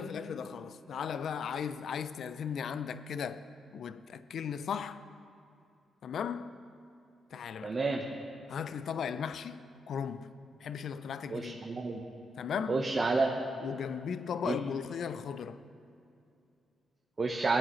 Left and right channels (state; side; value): normal; both; correlation 0.79